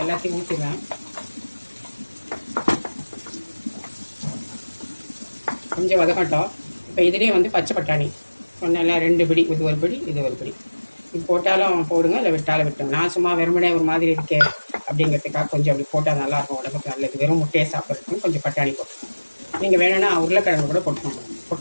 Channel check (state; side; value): inverted; both; correlation -1.00